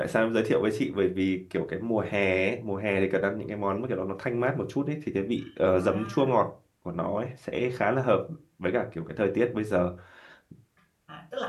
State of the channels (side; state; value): both; identical; correlation 1.00